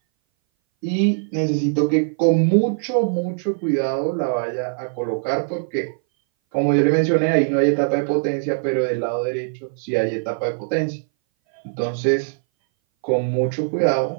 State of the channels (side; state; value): left; silent; 60 dB below the other